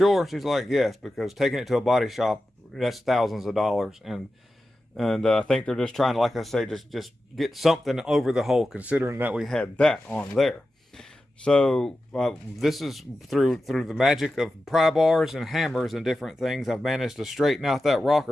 She's like, yes, because taking it to a body shop, that's thousands of dollars. And I think they're just trying to, like I say, just get something over the hole, considering that we had that on there. So this is through the magic of pry bars and hammers and different things, I've managed to straighten out that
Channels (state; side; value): normal; both; correlation 0.92